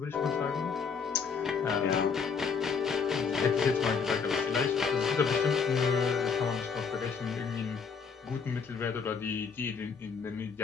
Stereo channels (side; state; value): right; quieter; 5.9 dB